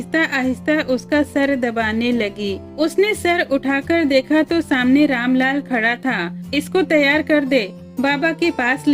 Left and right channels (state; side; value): identical; both; correlation 1.00